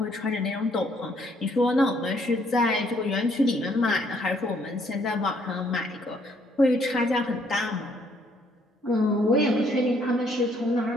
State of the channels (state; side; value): normal; both; correlation 0.67